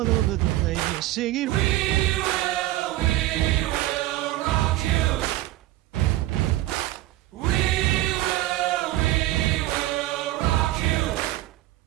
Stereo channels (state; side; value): quieter; left; 16.0 dB